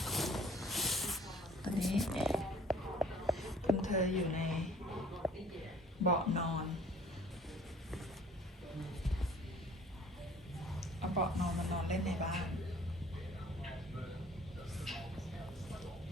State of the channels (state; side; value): normal; both; correlation 0.53